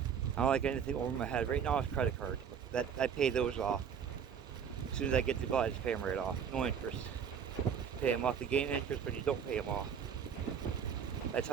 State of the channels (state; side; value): quieter; left; 7.5 dB